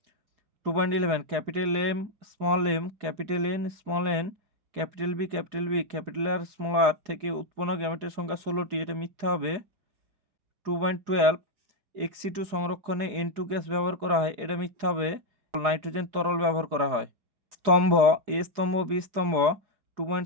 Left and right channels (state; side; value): late; left; 4.8 ms